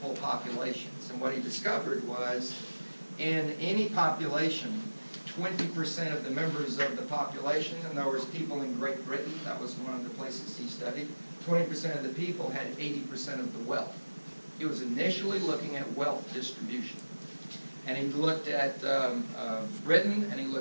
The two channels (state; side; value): inverted; both; correlation -1.00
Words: populations. And what he discovered was, in any population, 20% of the members of the population, in other words, people in Great Britain, that was one of the places he studied, 20% of the people had 80% of the wealth. He was initially looking at wealth distribution. And he looked at Britain, and he